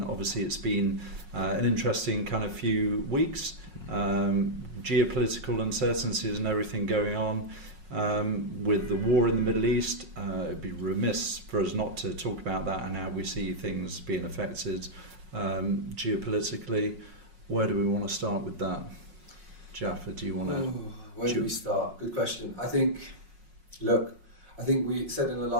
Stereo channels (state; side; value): late; left; 5.5 ms